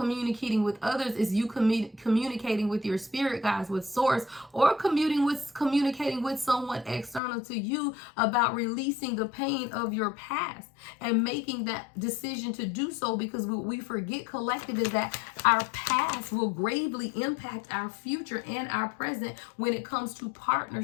with others, is you communicating with your spirit guides, with source, or communicating with someone external to you about releasing the pain of your past and making that decision to do so, because what we forget collective is that our past will gravely impact our future and our present when it comes to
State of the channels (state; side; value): drops out; right; at 7.2 s